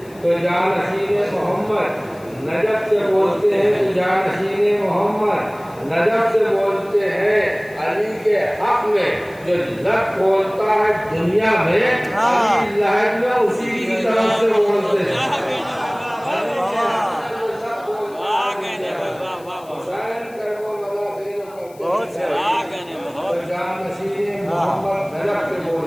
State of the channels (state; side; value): noise; left; hiss, 26 dB below the sound